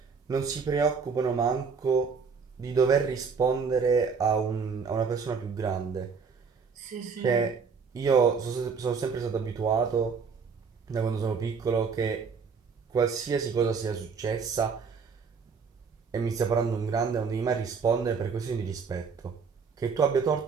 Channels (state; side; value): quieter; left; 5.6 dB